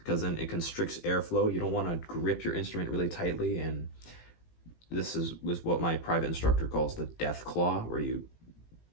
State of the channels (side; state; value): right; late; 18 ms